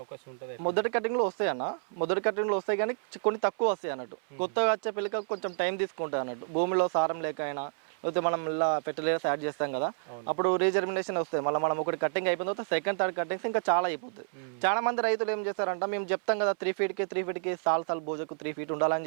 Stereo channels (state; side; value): silent; left; 58 dB below the other